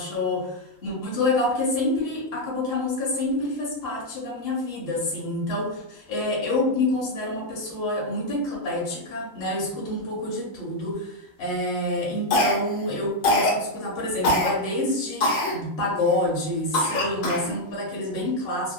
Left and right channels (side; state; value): both; normal; correlation 0.00